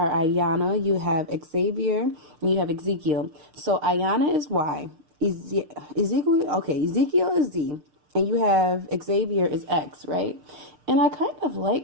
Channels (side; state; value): left; late; 6.6 ms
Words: Ayana, you have Xavier, and you have Ezekiel. So Ayana is Y, Ezekiel is Z, and you have Xavier is X, right? And I kind of